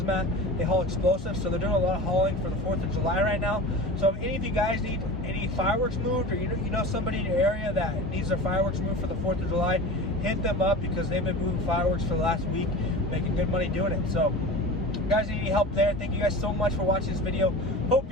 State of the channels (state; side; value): normal; both; correlation 0.33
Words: they haul explosives, so they're doing a lot of hauling for the 4th of July right now. So if any of you guys need any fireworks moved, or you know somebody in your area that needs their fireworks moved for the 4th of July, hit them up because they've been moving fireworks for the last week, making good money doing it. So if you guys need any help there, thank you guys so much for watching this video. Hope